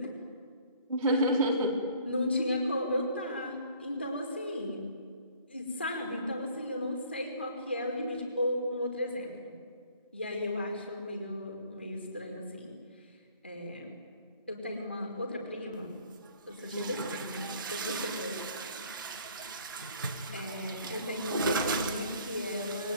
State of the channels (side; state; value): both; inverted; correlation -0.56